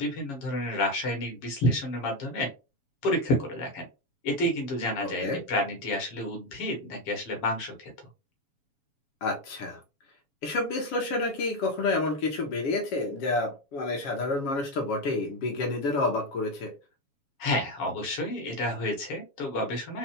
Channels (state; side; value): late; right; 7.2 ms